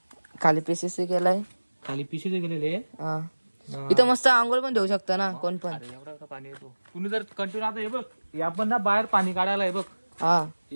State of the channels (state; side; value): inverted; both; correlation -1.00